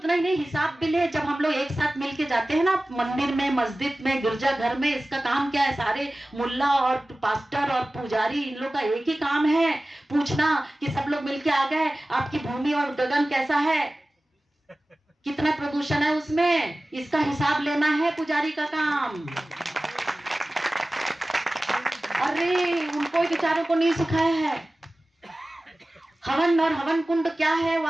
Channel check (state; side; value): normal; both; correlation 0.97